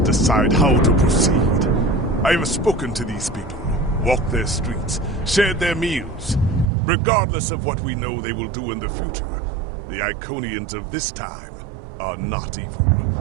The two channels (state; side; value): drops out; left; at 6.7 s